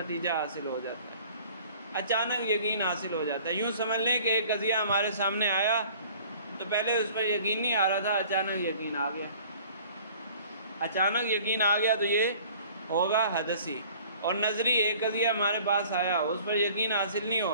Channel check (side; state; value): both; inverted; correlation -0.50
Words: حاصل ہو جاتا ہے، اچانک یقین حاصل ہو جاتا ہے. یوں سمجھ لیں کہ ایک قضیہ ہمارے سامنے آیا تو پہلے اس پر یقین نہیں آ رہا تھا، اچانک یقین آ گیا. اچانک یقین آ گیا تو یہ ہوگا حدثی. اور نظری ایک قضیہ ہمارے پاس آیا، اس پر یقین حاصل نہیں